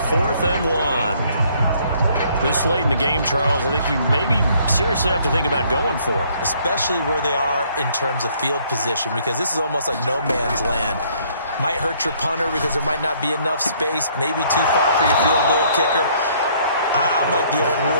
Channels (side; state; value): both; inverted; correlation -0.63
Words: 4th and 1. This late in the game, Charles, I think you maybe seriously have to think about going for it. Especially where they are in terms of field position, because this is almost like no man's land. Might hurt your punter because there might not be enough space, maybe too far for your field goal kicker. I'm like the old